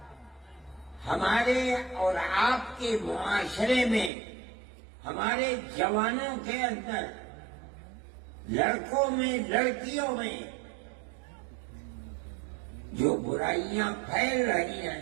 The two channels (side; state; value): left; drops out; at 4.1 s